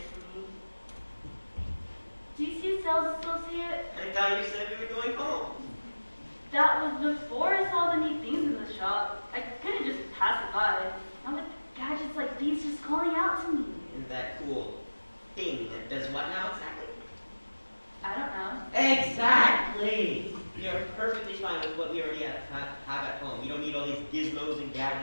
for me. Do you see a sales associate? I thought you said we were going home. That was before I saw the neat things in the shop. I couldn't just pass it by. Now with gadgets like these just calling out to me. And that cool thing that does what now exactly? I don't know. Exactly! You're perfectly fine with what we already have at home. You don't need all these gizmos and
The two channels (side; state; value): both; inverted; correlation -1.00